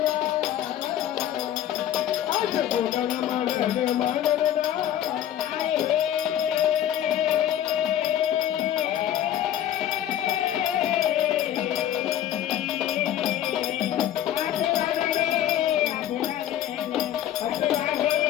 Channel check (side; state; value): right; quieter; 11.3 dB